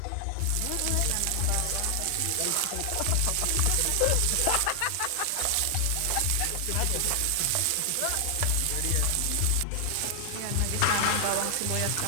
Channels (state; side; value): different; both; correlation 0.00